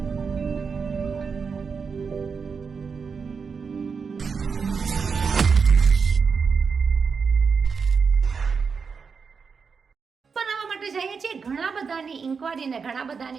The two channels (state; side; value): quieter; left; 5.5 dB